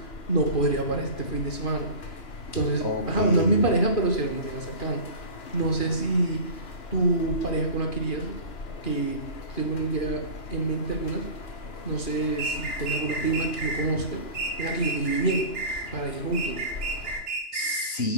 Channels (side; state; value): right; late; 2.9 ms